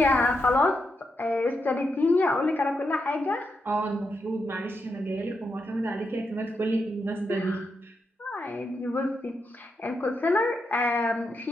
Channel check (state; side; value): normal; both; correlation 0.84